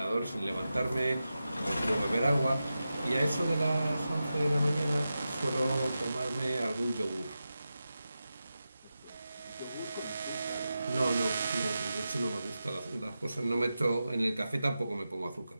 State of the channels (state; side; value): inverted; both; correlation -0.92